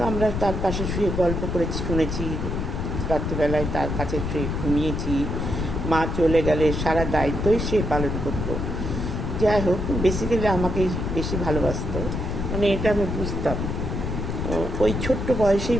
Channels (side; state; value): left; noise; rumble, 2 dB below the sound